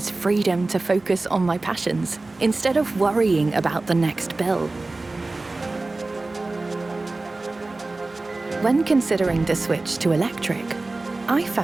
freedom to focus on my passions instead of worrying about the next bill. When considering the switch to electric, I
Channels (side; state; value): left; quieter; 3.2 dB